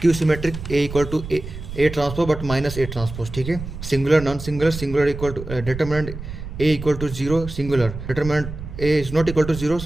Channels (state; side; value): noise; right; rumble, 10 dB below the sound